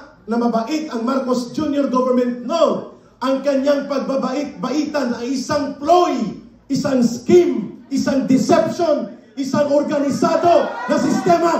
na mabait ang Marcos Jr. government. No! Ang kanyang pagbabait-baitan ay isang ploy, isang scheme, isang deception, isang organisado na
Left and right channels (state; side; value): identical; both; correlation 1.00